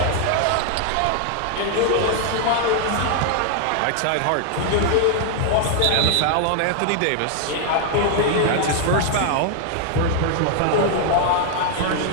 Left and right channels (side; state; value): both; different; correlation 0.00